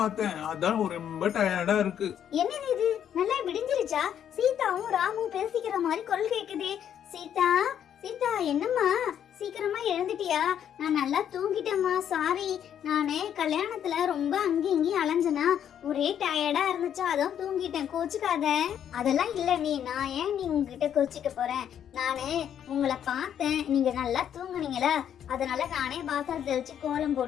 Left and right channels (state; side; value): quieter; right; 9.4 dB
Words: அதான் ரொம்ப டயர்டா இருக்கு. என்னது இது, நல்லா விடிஞ்சிருச்சா? சீதாவும் ராமும் பேசிக்கிற மாதிரி குரல் கேக்குதே. சீதா, சீதா, என்னம்மா சீக்கிரமா எழுந்துட்டியா? நான் நல்லா தூங்கிட்டேம்மா. சாரி, நானே கல்யாணத்துல ரொம்ப அங்கேயும் அலைஞ்சனா, ஒரே டயர்டா இருந்துச்சா, அதான் தூங்கிட்டேன். கோச்சுக்காத. அதெல்லாம் இல்ல நீ, நான் ஏன் நீ உங்ககிட்ட கோச்சிக்க போறேன்? நானு உங்களை பார்த்தேன், நீங்க நல்லா தூங்குனீங்களா, அதனால நானே வாசல் தெளிச்சு கோலம்